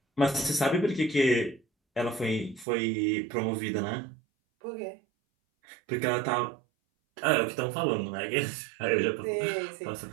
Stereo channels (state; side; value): drops out; left; at 2.7 s